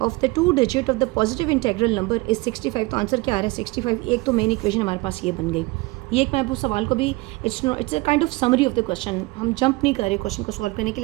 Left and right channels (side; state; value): left; quieter; 23.2 dB